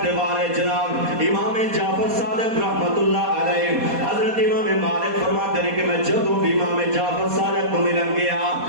دیوارے جناب امام جعفر صادق رحمت اللہ علیہ حضرت امام مالک فرماتے ہیں کہ میں جدوں بھی امام جعفر صادق کو ملن گیا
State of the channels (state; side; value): late; left; 4.2 ms